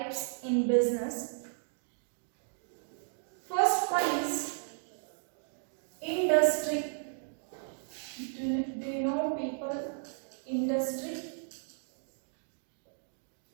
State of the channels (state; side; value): silent; left; digital silence